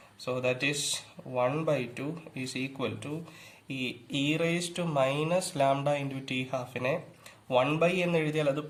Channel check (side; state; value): both; identical; correlation 1.00